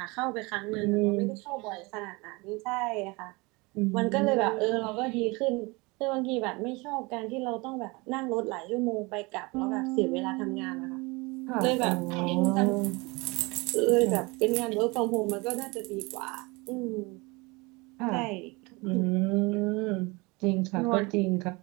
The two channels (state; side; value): quieter; left; 25.7 dB